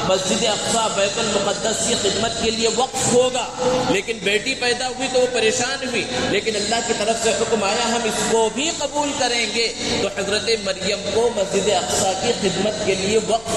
مسجد اقصیٰ، بیت المقدس کی خدمت کے لیے وقف ہوگا۔ لیکن بیٹی پیدا ہوئی تو وہ پریشان ہوئی، لیکن اللہ کی طرف سے حکم آیا ہم اس کو بھی قبول کریں گے، تو حضرت مریم کو مسجد اقصیٰ کی خدمت کے لیے وقف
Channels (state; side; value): noise; left; hum, 23 dB below the sound